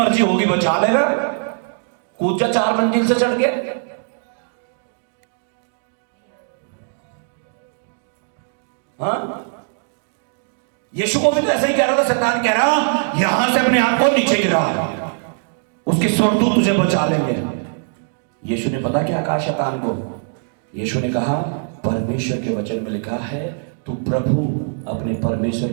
होगी बचा लेगा। कूद जा 4 मंजिल से चढ़ के। हाँ, यीशु को भी तो ऐसा ही कह रहा था। शैतान कह रहा यहां से अपने आप को नीचे गिरा, उसके स्वर्गदूत तुझे बचा लेंगे। यीशु ने पता क्या कहा शैतान को? यीशु ने कहा परमेश्वर के वचन में लिखा है तू प्रभु अपने परमेश्वर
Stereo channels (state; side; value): silent; left; digital silence